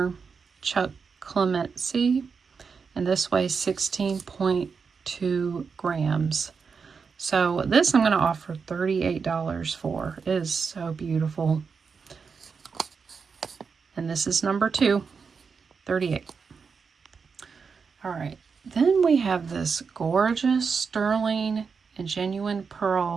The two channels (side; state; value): left; quieter; 5.5 dB